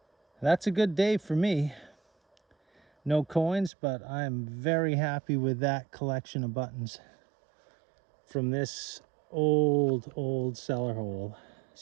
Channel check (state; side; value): drops out; left; at 3.7 s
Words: That's a good day for me. No coins, but I'm very happy with that collection of buttons from this old cellar hole,